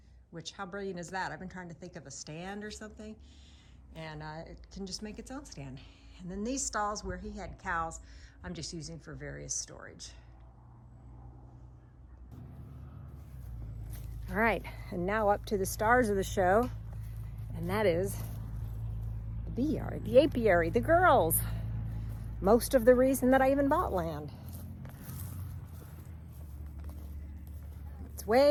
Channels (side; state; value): both; identical; correlation 1.00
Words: Which, how brilliant is that? I've been trying to think of a stand or something, and it can just make its own stand. And then these stalls where he had cows, I'm just using for various storage. All right, and now up to the stars of the show, and that is the bee yard, the apiary, the girls. Most of the reason that I even bought land. It's